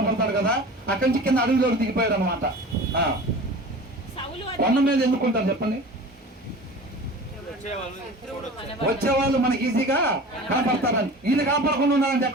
కదా, అక్కడి నుంచి కింద అడవిలోకి దిగిపోయాడు అనమాట. కొండ మీద ఎందుకుంటారు చెప్పండి? వచ్చేవాళ్ళు మనకి ఈజీగా కనపడతారని. వీళ్ళు కాపాడకుండా ఉండాలంటే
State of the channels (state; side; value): normal; both; correlation 0.38